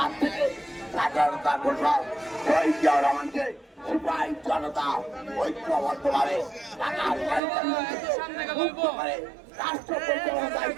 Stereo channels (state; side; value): drops out; left; at 7.4 s